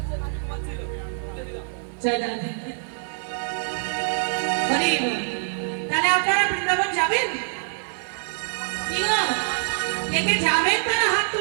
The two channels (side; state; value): left; silent; 56 dB below the other